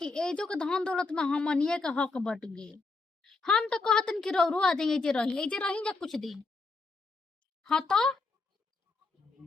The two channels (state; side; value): quieter; right; 3.8 dB